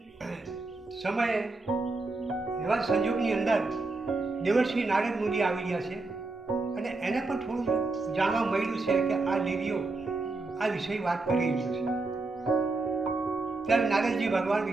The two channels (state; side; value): quieter; left; 3.4 dB